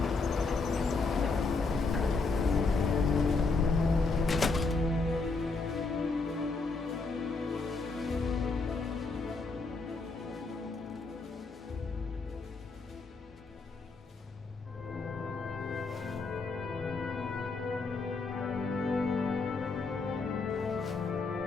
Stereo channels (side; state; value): right; quieter; 4.0 dB